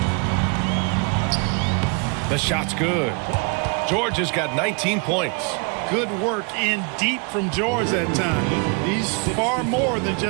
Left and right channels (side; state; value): left; quieter; 36.0 dB